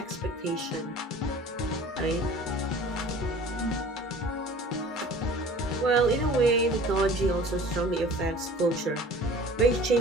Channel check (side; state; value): both; normal; correlation 0.45